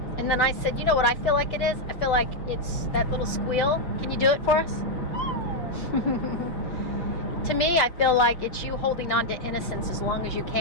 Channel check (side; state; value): right; late; 6.0 ms